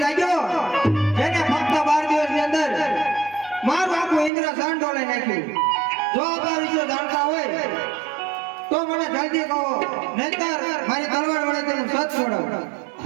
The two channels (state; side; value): drops out; left; at 4.3 s